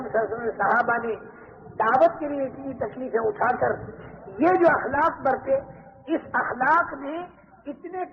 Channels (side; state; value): both; identical; correlation 1.00